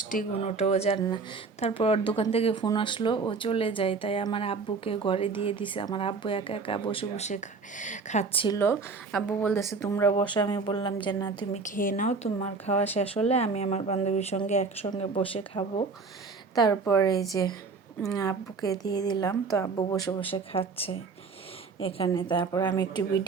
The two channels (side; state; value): left; quieter; 4.6 dB